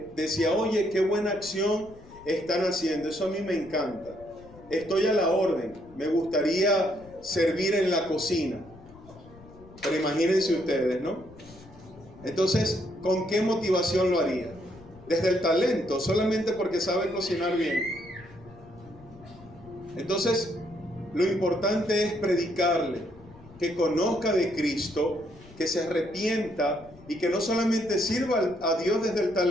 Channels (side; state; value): left; noise; rumble, 22 dB below the sound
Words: oye, qué buena acción están haciendo, eso a mí me encanta, estoy a la orden, me gustaría servir en la cocina. Pero imagínense ustedes, ¿no? Entonces, ¿con qué motivación lo haría? Desde el talento, solamente porque sabe cocinar bien. Entonces, lo importante es predicarle, que conozca de Cristo, que se arrepienta y que no solamente sirva a Dios desde el